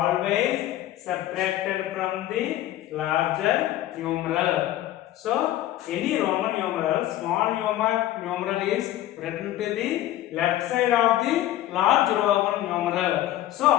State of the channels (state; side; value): quieter; right; 13.8 dB